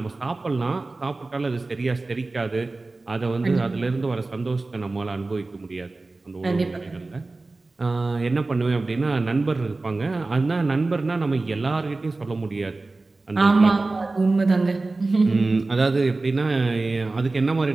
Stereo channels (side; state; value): left; quieter; 3.3 dB